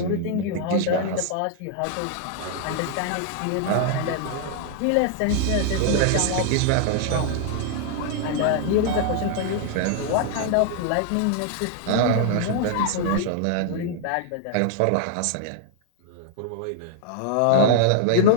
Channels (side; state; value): both; different; correlation -0.01